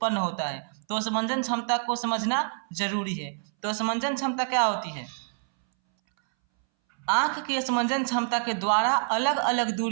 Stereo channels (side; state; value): left; silent; 60 dB below the other